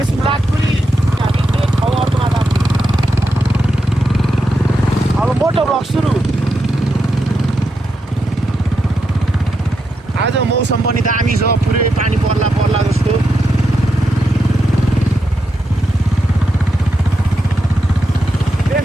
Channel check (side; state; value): both; normal; correlation 0.85